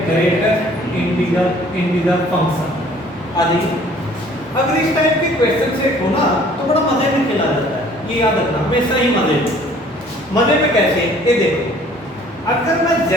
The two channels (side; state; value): both; normal; correlation 0.55